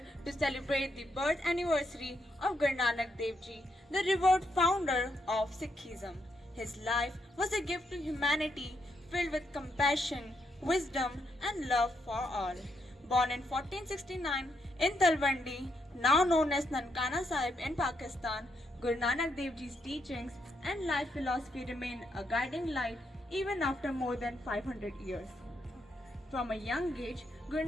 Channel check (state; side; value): normal; both; correlation 0.79